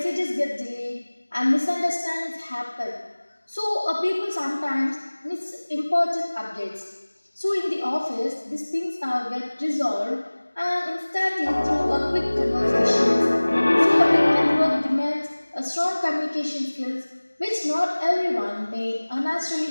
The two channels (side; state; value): both; inverted; correlation -1.00